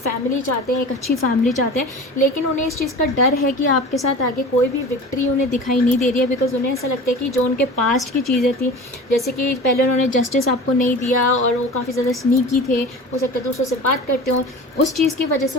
चाहते हैं, एक अच्छी फैमिली चाहते हैं। लेकिन उन्हें इस चीज़ का डर है कि आपके साथ आगे कोई भी विक्ट्री उन्हें दिखाई नहीं दे रही है, बिकॉज उन्हें ऐसा लगता है कि जो उनके पास्ट की चीज़ें थी, जैसे कि पहले उन्होंने जस्टिस आपको नहीं दिया और वो काफ़ी ज़्यादा स्नीकी थे, हो सकता है दूसरों से बात करते हो, उस चीज़ की वजह से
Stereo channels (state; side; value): normal; both; correlation 0.36